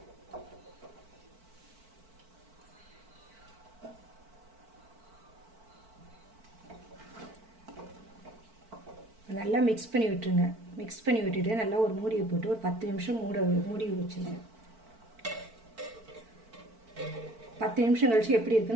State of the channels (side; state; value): left; late; 4.5 ms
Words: நல்லா மிக்ஸ் பண்ணி விட்டுருங்க. மிக்ஸ் பண்ணி விட்டுட்டு நல்லா ஒரு மூடியை போட்டு ஒரு 10 நிமிஷம் மூடி வச்சுருங்க. 10 நிமிஷம் கழிச்சு எப்படி